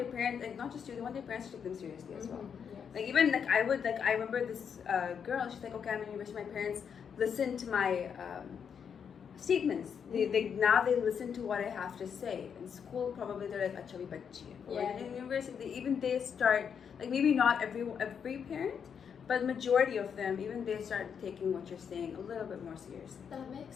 parents, like not just you, they want their parents to take them seriously as well. Yes. Like even like I remember this girl. She's like, okay, I'm in university. My parents listen to my statements. They now they listen to what I have to say. In school, probably they're like, acha bhi bachchi hai. Or in university, they start, like maybe not every parent, but majority of them, even they start taking what you're saying a little bit more seriously. That makes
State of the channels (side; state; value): right; quieter; 7.2 dB